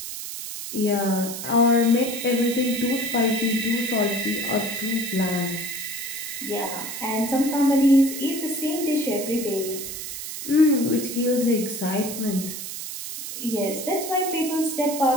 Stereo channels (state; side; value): noise; right; hiss, 7 dB below the sound